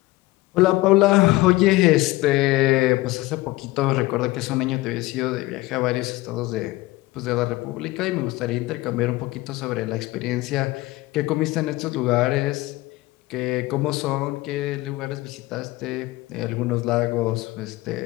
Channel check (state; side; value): quieter; right; 19.4 dB